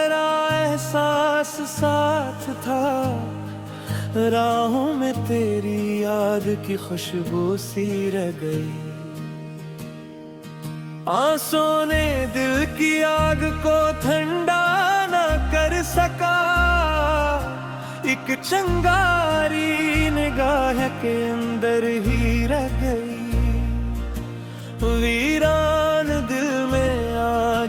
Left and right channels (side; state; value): both; identical; correlation 1.00